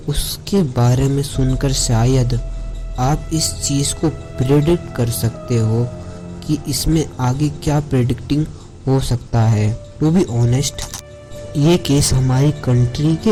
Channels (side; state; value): both; identical; correlation 1.00